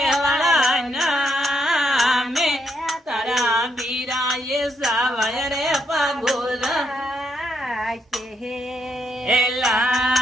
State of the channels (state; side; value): normal; both; correlation 0.77